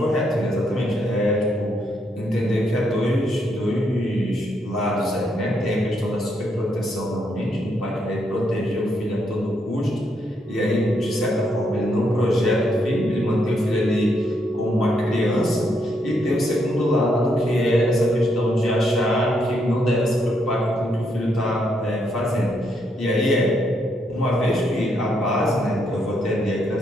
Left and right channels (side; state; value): both; normal; correlation 0.76